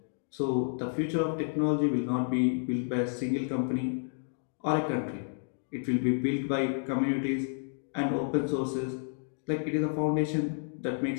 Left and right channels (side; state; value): right; silent; digital silence